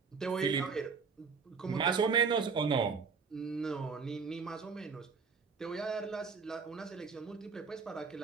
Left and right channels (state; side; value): quieter; left; 5.4 dB